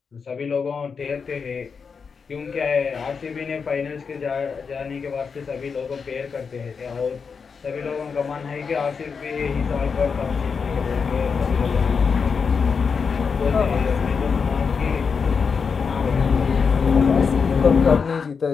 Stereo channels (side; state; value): right; quieter; 5.7 dB